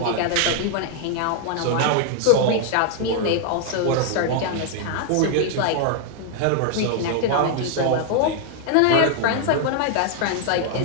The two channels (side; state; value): both; different; correlation 0.00